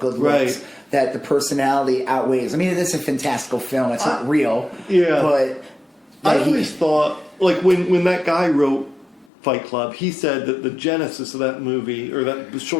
looks that the personality outweighs. I mean, it is a fantastical film. It's not real. Yeah, but I always thought like when that guy wrote Fight Club, he said that the genesis of that movie or that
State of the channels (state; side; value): drops out; right; at 9.2 s